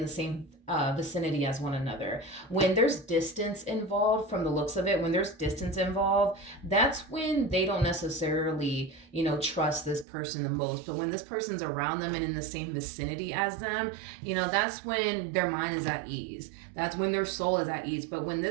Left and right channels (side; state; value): left; drops out; at 10.1 s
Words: the same vicinity as one another. When there's distance involved, from the looks of it, when there's distance involved, that's when they don't necessarily, trust this person the most. But when this person's around them and in the same vicinity as them, that's when their mind is at ease. That's when their soul is at ease. But when